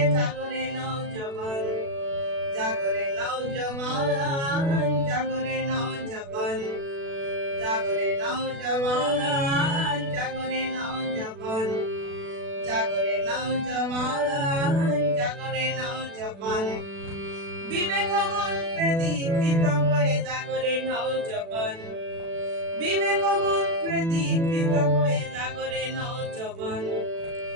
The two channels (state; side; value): late; left; 36 ms